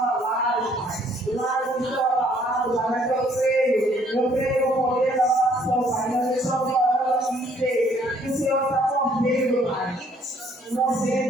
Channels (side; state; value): both; normal; correlation 0.63